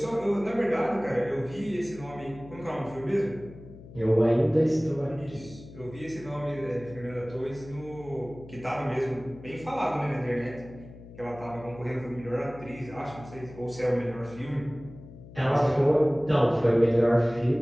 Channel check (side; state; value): left; noise; hum, 17 dB below the sound